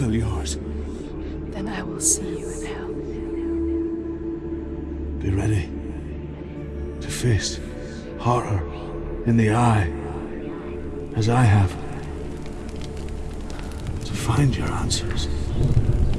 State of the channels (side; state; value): both; identical; correlation 1.00